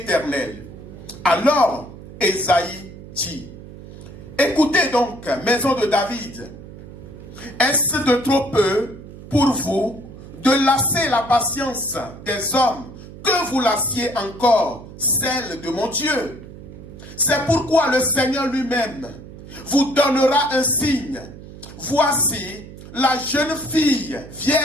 Alors Ésaïe dit, écoutez donc, maison de David, est-ce de trop peu pour vous de lasser la patience des hommes que vous lassiez encore celle de mon Dieu? C'est pourquoi le Seigneur lui-même vous donnera un signe. Voici la jeune fille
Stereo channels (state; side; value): noise; right; hum, 16 dB below the sound